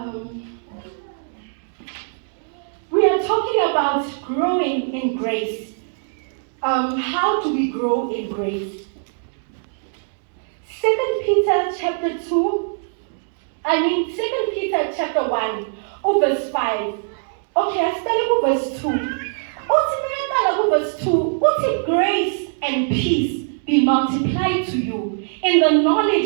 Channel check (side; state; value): left; silent; digital silence